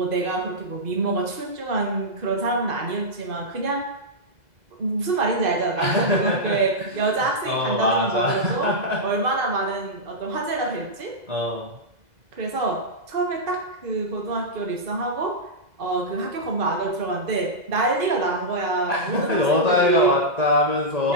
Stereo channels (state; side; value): late; left; 2.0 ms